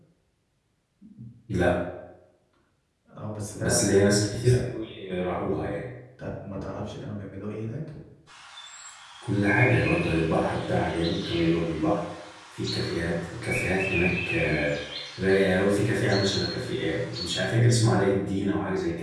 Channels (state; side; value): identical; both; correlation 1.00